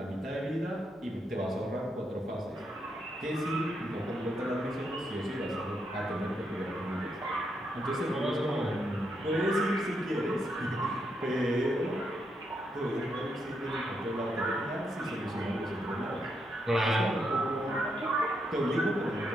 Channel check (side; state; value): both; normal; correlation 0.80